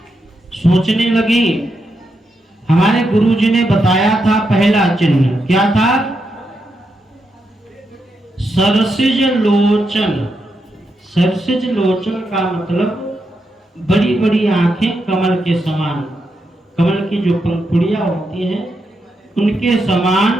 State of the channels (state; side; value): normal; both; correlation 0.83